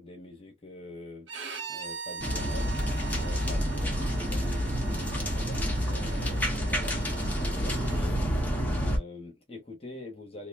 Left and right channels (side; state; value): both; normal; correlation 0.74